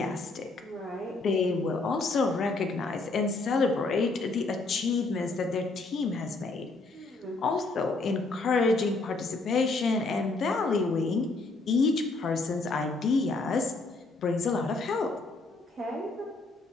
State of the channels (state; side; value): quieter; right; 3.5 dB